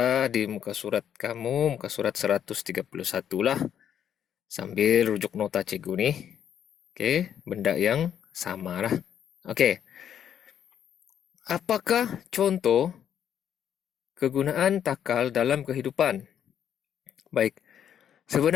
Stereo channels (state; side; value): quieter; right; 9.3 dB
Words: di muka surat kamu, muka surat 131 lah, sambil rujuk nota cikgu nih. Oke, benda yang sama lah. Oke, apakah contoh kegunaan takal dalam kehidupan? Baik,